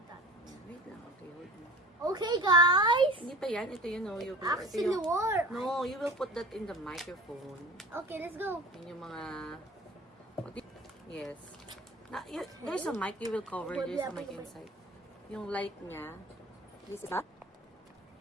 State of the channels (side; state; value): both; normal; correlation 0.40